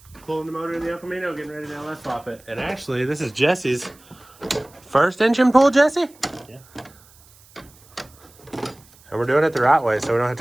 Pulling the motor in the Escamino, getting ready to LS swap it. And actually, this is Jesse's first engine pull, Jesse? Yeah. And we're doing it the right way, so we don't have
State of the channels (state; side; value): noise; right; hiss, 27 dB below the sound